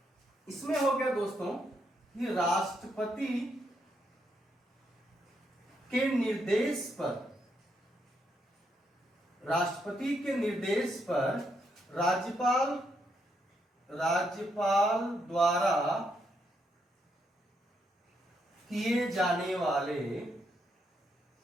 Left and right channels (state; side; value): normal; both; correlation 0.78